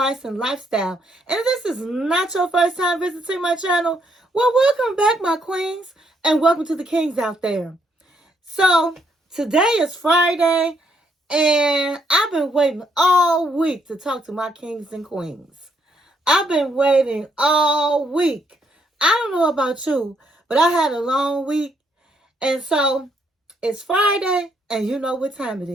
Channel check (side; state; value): both; normal; correlation 0.73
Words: and lifestyle. And if this is not your first time visiting my channel, well, welcome back, my queens, and welcome to the kings out there. So, today is Friday. And I've been waiting all week to talk to my kings and queens. I've been waiting all week. I don't know about you, but I had a long week. And so it's Friday, and you know what time it